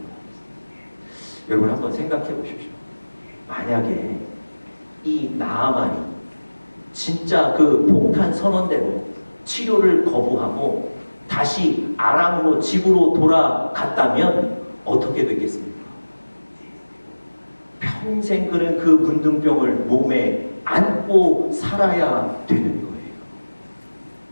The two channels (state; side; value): inverted; both; correlation -1.00